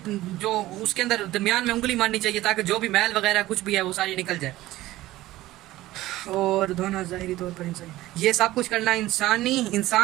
جو اس کے اندر درمیان میں انگلی مارنی چاہیے تاکہ جو بھی میل وغیرہ کچھ بھی ہے وہ ساری نکل جائے۔ اور دھونا ظاہری طور پر یہ سب کچھ کرنا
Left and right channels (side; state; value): left; quieter; 16.5 dB